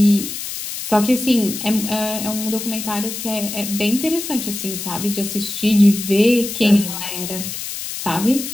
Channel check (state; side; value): noise; left; hiss, 7 dB below the sound